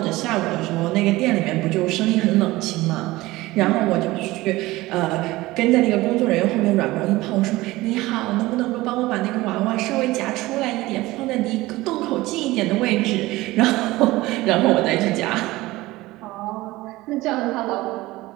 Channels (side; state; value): left; quieter; 19.0 dB